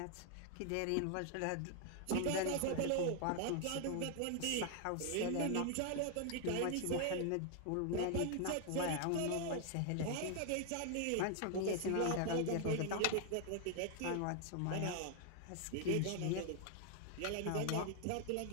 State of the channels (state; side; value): different; both; correlation 0.00